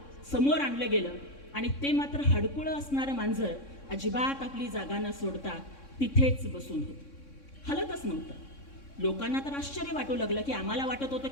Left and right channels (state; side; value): late; right; 3.6 ms